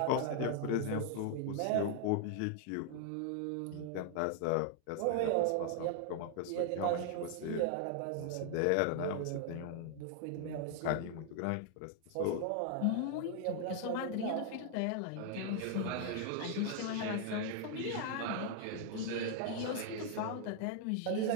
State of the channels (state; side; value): different; both; correlation 0.00